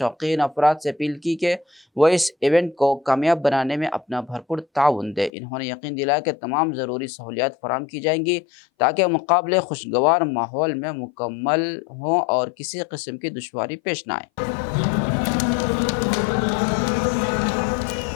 افراد سے اپیل کی کہ وہ اس ایونٹ کو کامیاب بنانے میں اپنا بھرپور تعاون دیں۔ انہوں نے یقین دلایا کہ تمام ضروری سہولیات فراہم کی جائیں گی تاکہ مقابلے خوشگوار ماحول میں مکمل ہوں اور کسی قسم کی دشواری پیش نہ آئے۔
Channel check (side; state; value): right; drops out; at 5.3 s